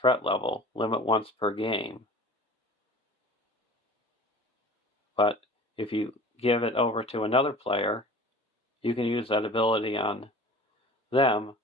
threat level, limit once per game. But if you give it over to another player, you can use that ability on them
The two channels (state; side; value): normal; both; correlation 0.42